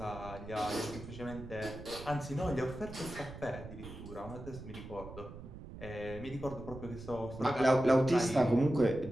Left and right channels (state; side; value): noise; right; rumble, 13 dB below the sound